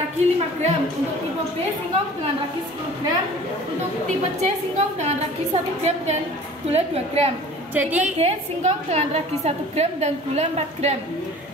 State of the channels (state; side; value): normal; both; correlation 0.45